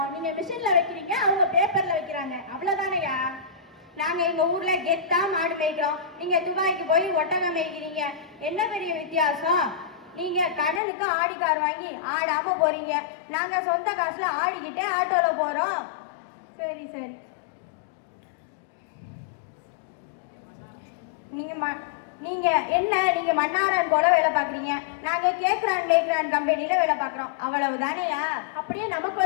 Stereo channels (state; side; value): drops out; right; at 10.8 s